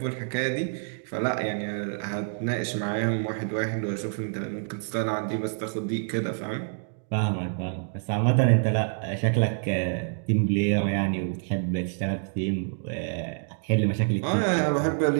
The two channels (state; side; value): silent; left; digital silence